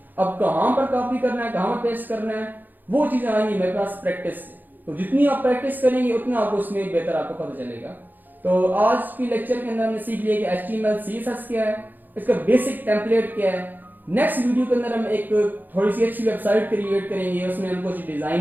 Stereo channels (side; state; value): left; late; 0.087 ms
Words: अब कहां पर कॉपी करना है, कहां पर पेस्ट करना है, वो चीजें आएंगी मेरे पास प्रैक्टिस से। तो जितनी आप प्रैक्टिस करेंगे उतना आपको उसमें बेहतर आपको पता चलेगा। तो आज की लेक्चर के अंदर हमने सीख लिया कि HTML CSS क्या है, इसका बेसिक टेम्पलेट क्या है। नेक्स्ट वीडियो के अंदर हम एक थोड़ी सी अच्छी वेबसाइट क्रिएट करेंगे, उसमें हम कुछ